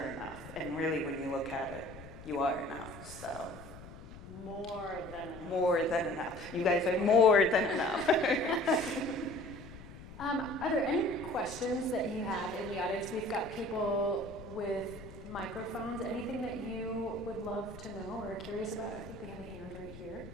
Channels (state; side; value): noise; left; rumble, 15 dB below the sound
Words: And really, when you look at it, you are enough. So More than enough. more than enough. You guys are more than enough. Are there any questions that you have in the audience? We've got people with microphones. Anything that you would love to know or are curious about? I think we have a hand right here.